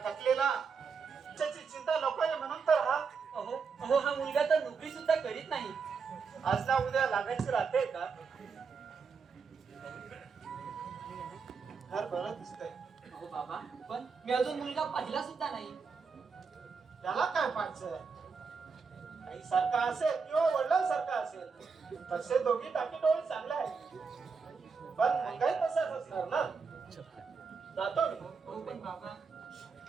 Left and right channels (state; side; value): quieter; left; 5.3 dB